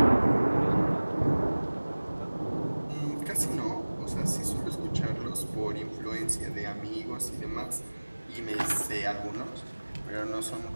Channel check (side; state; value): both; inverted; correlation -1.00